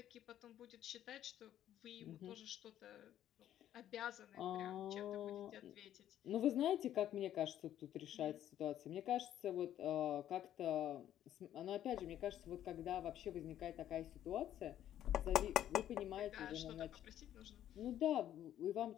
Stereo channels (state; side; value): quieter; right; 11.5 dB